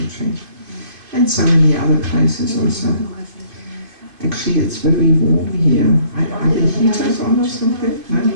And so many other places also. Actually, it's very warm here. Are the heaters on or something? No?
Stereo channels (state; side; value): late; left; 2.5 ms